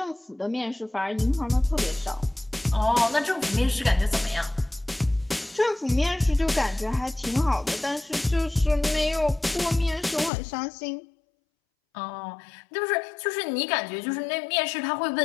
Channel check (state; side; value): drops out; right; at 10.3 s